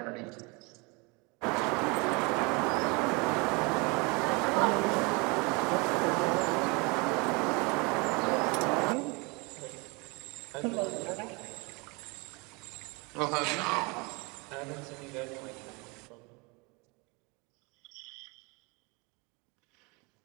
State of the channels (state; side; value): quieter; left; 28.5 dB